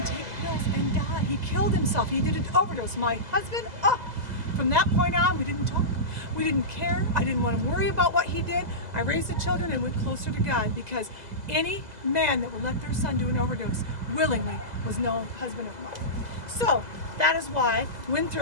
take pills and die. He killed himself. He did an overdose. My husband, from that point on, we didn't talk. We didn't care. I didn't want to worry about what he did. I raised the children and went closer to God, because any man that would let their son do an overdose willingly was no husband of mine. So that is why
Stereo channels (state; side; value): late; left; 2.0 ms